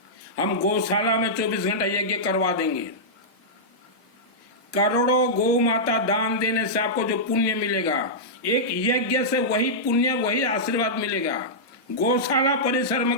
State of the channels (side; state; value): both; normal; correlation -0.11